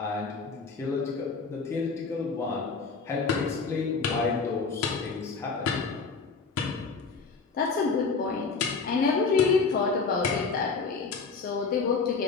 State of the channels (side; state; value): right; quieter; 4.7 dB